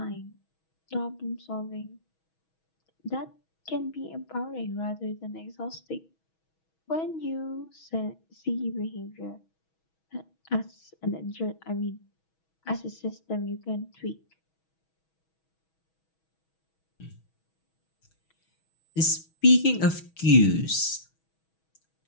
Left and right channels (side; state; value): right; late; 6.2 ms